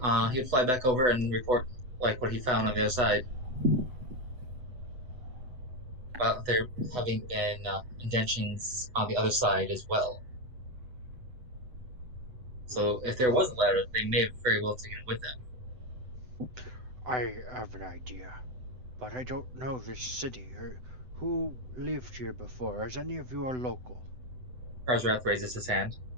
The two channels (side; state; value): left; late; 7.9 ms